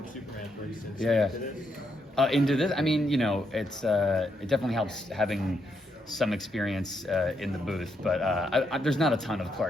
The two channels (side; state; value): both; normal; correlation 0.79